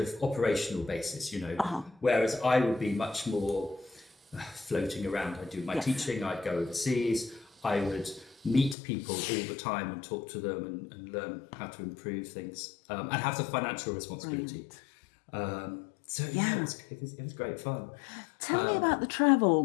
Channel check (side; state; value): right; drops out; at 8.8 s